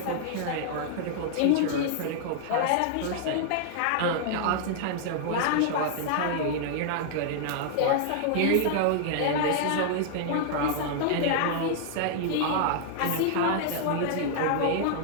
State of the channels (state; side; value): different; both; correlation -0.01